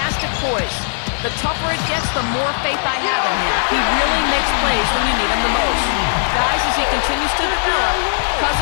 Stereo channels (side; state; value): right; silent; digital silence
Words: poise. The tougher it gets, the more faith I have in him. He really makes plays when you need him the most. Guys, as he continues to develop,